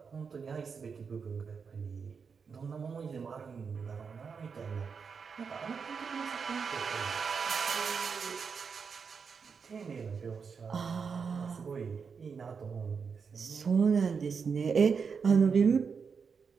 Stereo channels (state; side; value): quieter; left; 5.8 dB